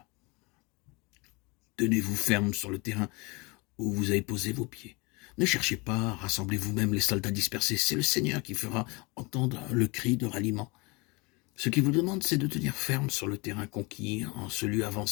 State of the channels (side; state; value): right; quieter; 27.2 dB